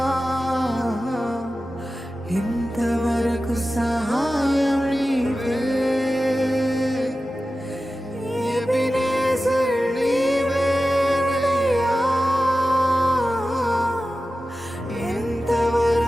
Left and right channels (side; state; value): both; normal; correlation 0.94